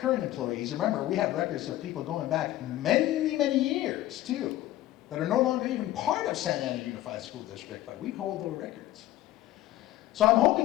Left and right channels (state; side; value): quieter; right; 14.8 dB